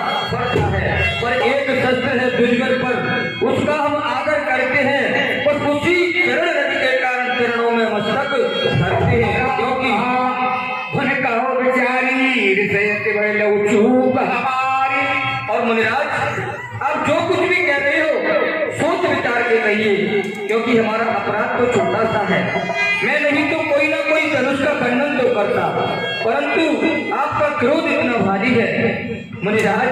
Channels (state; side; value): identical; both; correlation 1.00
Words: पड़ता है। पर एक शस्त्र है दुर्जन पर, उसका हम आदर करते हैं और उसी चरण रज के कारण चरणों में मस्तक धरते हैं। क्योंकि उन्हें कहो बेचारी हृदय बड़े चूक हमारी। और मुनिराज आप जो कुछ भी कह रहे हो सोच विचार के कहिए, क्योंकि हमारा अपराध तो छोटा सा है। मैं नहीं तो कोई ना कोई धनुष का खंडन तो करता, परंतु आपका क्रोध इतना भारी है। मुनिराज